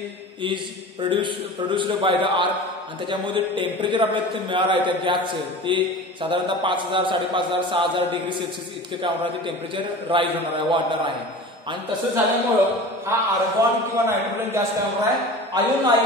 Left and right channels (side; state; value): both; normal; correlation 0.36